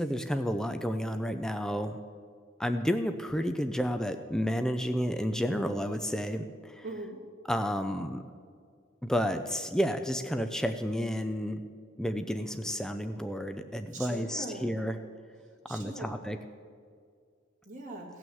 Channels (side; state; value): both; normal; correlation 0.85